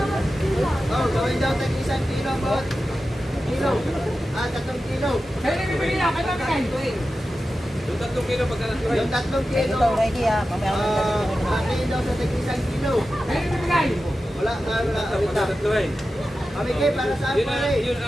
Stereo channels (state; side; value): normal; both; correlation 0.92